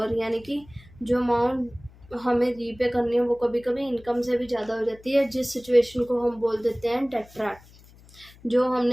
यानी कि जो अमाउंट हमें रीपे करनी है वो कभी कभी इनकम से भी ज़्यादा हो जाती है, जिस सिचुएशन को हम बोल देते हैं डेट ट्रैप, जो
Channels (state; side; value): noise; left; hum, 24 dB below the sound